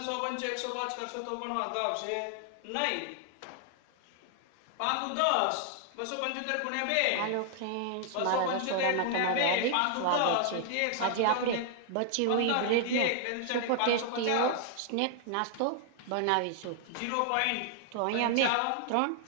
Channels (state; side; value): different; both; correlation 0.00